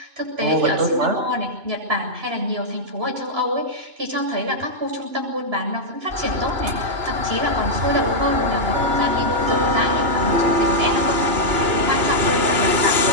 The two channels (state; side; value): late; left; 2.9 ms